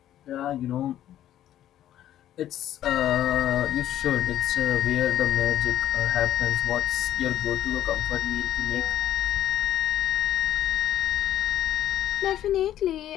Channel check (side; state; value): right; quieter; 12.0 dB